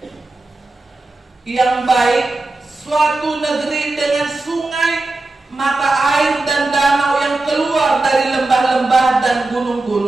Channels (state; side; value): quieter; left; 3.1 dB